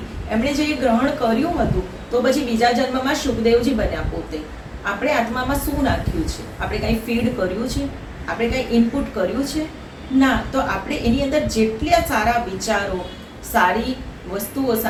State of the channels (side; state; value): both; identical; correlation 1.00